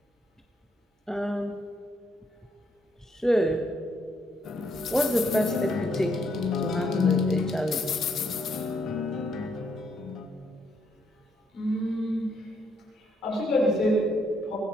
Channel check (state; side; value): normal; both; correlation 0.73